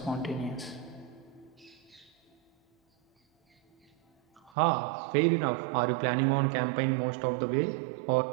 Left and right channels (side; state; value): left; drops out; at 4.5 s